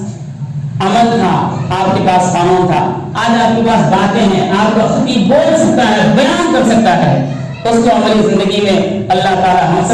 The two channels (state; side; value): identical; both; correlation 1.00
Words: عمل تھا، آپ کے پاس قانون تھا. آج آپ کے پاس باتیں ہیں، آپ کا خطیب بول سکتا ہے، بیان کر سکتا ہے، اس کو عملی زندگی میں اللہ تعالی ہم